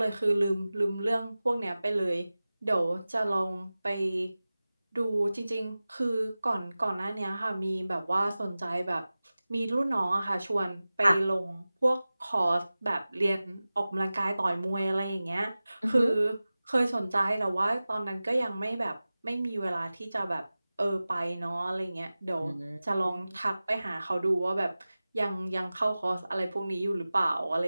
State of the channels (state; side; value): inverted; both; correlation -0.97